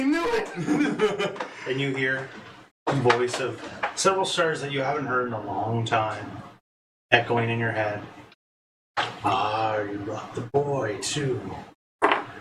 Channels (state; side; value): identical; both; correlation 1.00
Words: knew it! And you hear the voice of several stars that you haven't heard in a long time echoing in your head. Ah, you brought the boy too.